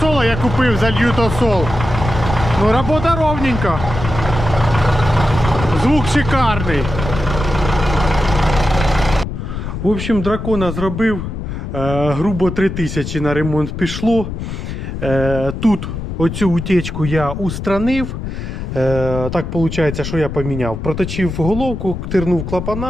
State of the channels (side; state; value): left; noise; rumble, 6 dB below the sound